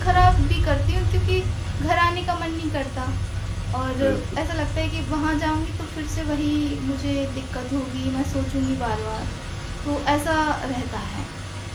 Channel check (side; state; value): both; identical; correlation 1.00